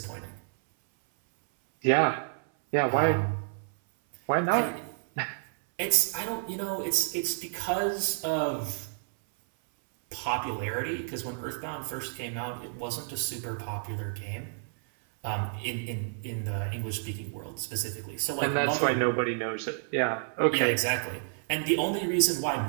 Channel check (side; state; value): left; silent; 58 dB below the other